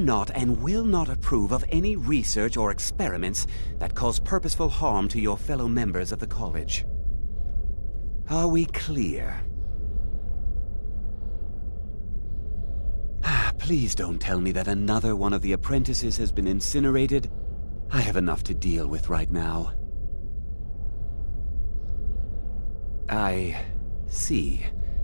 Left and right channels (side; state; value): both; inverted; correlation -1.00